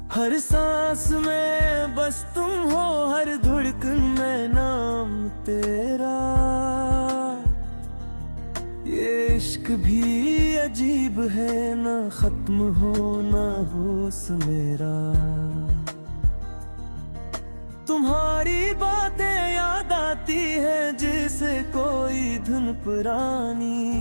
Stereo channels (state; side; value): inverted; both; correlation -1.00